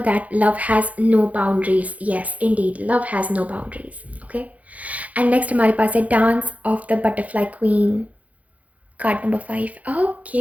that love has no boundaries. Yes indeed, love has no boundaries. Okay, and next हमारे पास है dance of the butterfly queen, card number 5.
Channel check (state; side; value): late; left; 0.070 ms